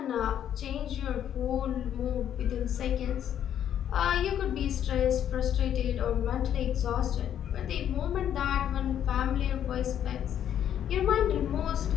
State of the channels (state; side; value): quieter; right; 10.0 dB